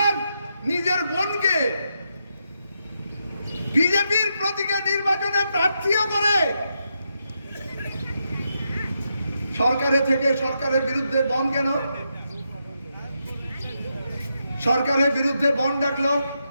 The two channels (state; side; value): inverted; both; correlation -0.83